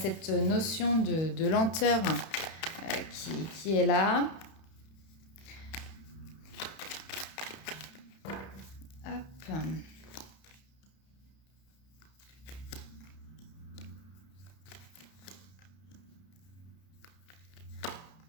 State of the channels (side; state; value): right; late; 31 ms